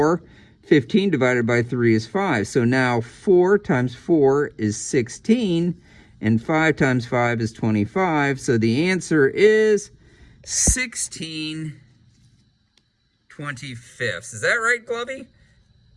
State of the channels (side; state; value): both; identical; correlation 1.00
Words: 15 divided by 3 is 5. So now 4 times 4 is 16, and 5 times 5 is 25. So the answer is 16/25. Is that right, Glovey?